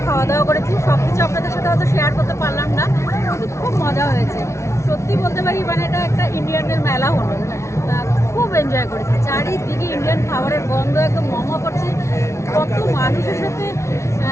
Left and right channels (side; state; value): right; late; 0.13 ms